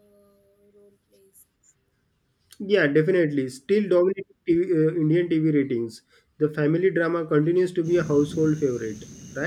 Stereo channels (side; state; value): both; identical; correlation 1.00